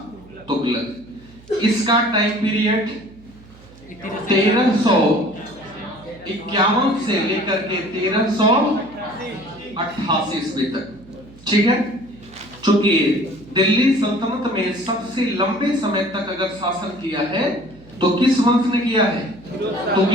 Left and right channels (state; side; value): noise; right; hum, 23 dB below the sound